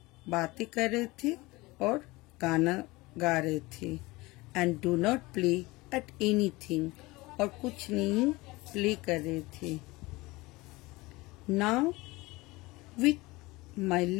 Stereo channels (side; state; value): right; quieter; 21.9 dB